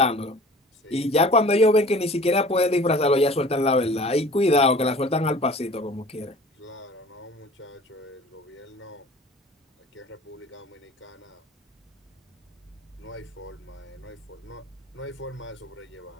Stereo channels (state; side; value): normal; both; correlation 0.45